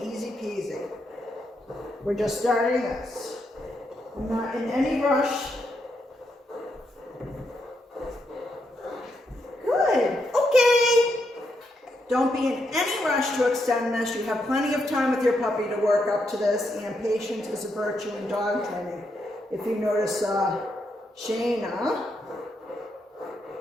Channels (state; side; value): normal; both; correlation 0.80